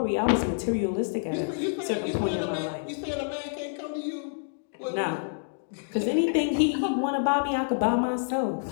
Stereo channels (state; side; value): silent; right; digital silence